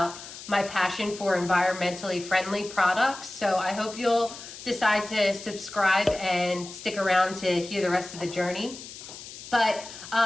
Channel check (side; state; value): left; noise; hiss, 14 dB below the sound